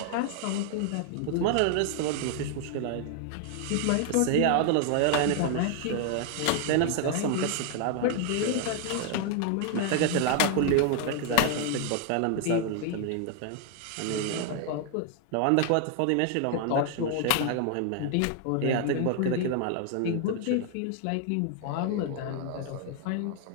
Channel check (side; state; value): both; different; correlation 0.00